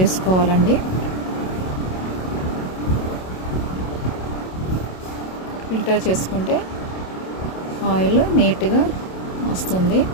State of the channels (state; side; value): late; right; 27 ms